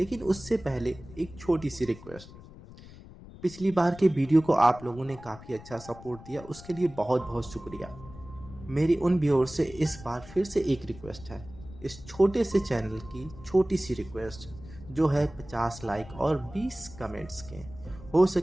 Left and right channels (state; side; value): noise; left; rumble, 17 dB below the sound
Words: उससे पहले एक छोटी सी रिक्वेस्ट। पिछली बार के वीडियो को आप लोगों ने काफ़ी अच्छा सपोर्ट दिया, उसके लिए बहुत बहुत शुक्रिया। मेरी उन व्यूअर से इस बार फिर से एक रिक्वेस्ट है, इस छोटे से चैनल की छोटी सी रिक्वेस्ट जो है 50 लाइक और 20 कमेंट्स के। हो